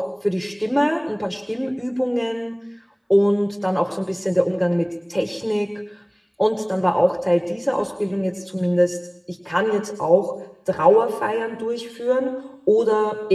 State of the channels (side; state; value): both; identical; correlation 1.00